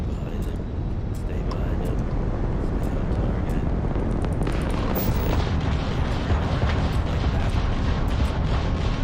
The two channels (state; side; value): identical; both; correlation 1.00